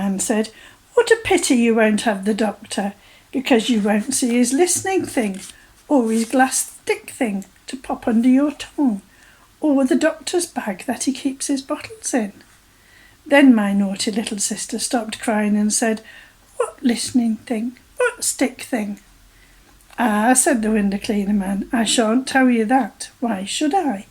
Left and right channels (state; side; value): identical; both; correlation 1.00